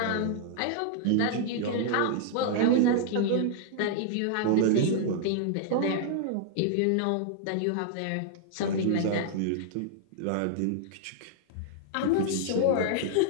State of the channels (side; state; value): both; different; correlation -0.01